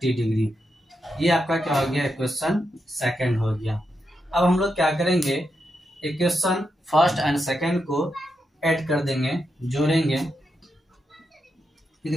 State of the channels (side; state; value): both; normal; correlation 0.85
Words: डिग्री। ये आपका क्या हो गया, इक्वेशन सेकंड हो गया। अब हम लोग क्या करेंगे, इक्वेशन फर्स्ट एंड सेकंड को ऐड कर देंगे, जोड़ेंगे,